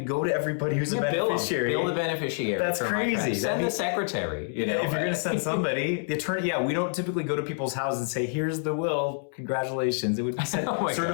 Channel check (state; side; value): silent; right; 60 dB below the other